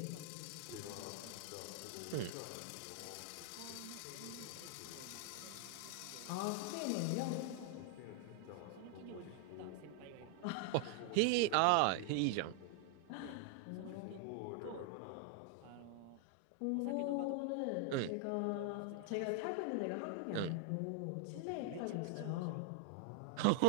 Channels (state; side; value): different; both; correlation 0.00